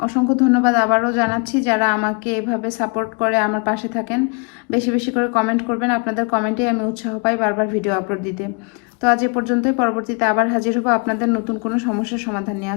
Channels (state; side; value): quieter; right; 33.9 dB